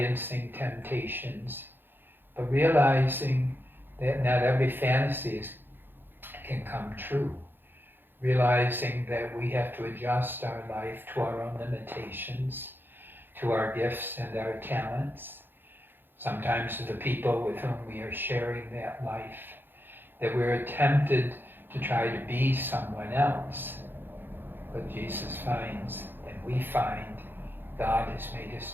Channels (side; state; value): left; late; 0.099 ms